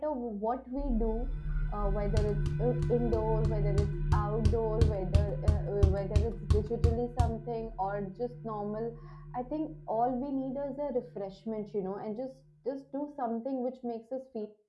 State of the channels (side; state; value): both; identical; correlation 1.00